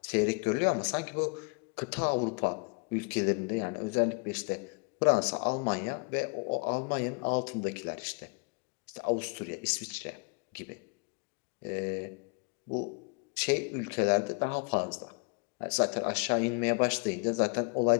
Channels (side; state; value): right; quieter; 33.2 dB